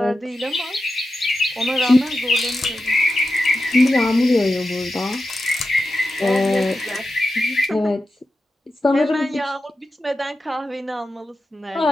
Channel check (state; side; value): normal; both; correlation 0.90